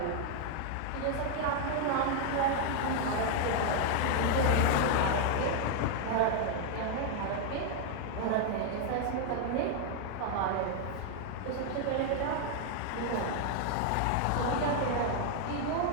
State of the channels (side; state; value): both; different; correlation 0.00